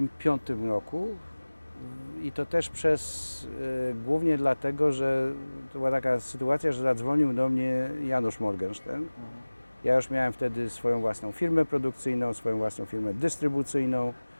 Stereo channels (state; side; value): inverted; both; correlation -1.00